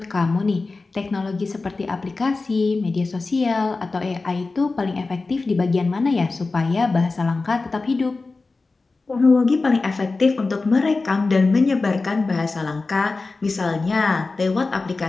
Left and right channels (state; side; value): quieter; right; 3.7 dB